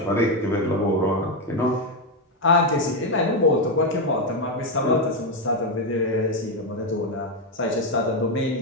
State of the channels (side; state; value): both; normal; correlation 0.06